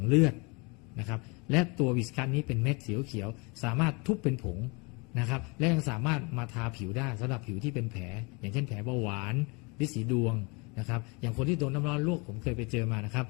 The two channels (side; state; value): right; quieter; 29.8 dB